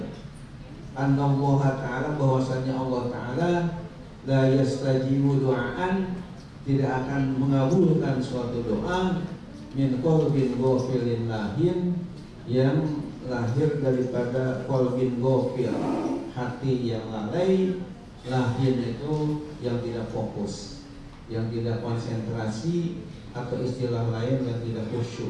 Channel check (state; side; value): identical; both; correlation 1.00